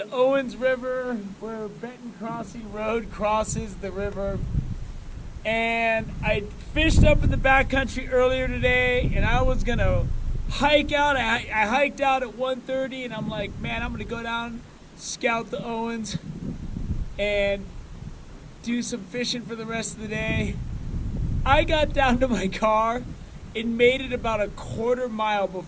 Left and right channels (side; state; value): both; identical; correlation 1.00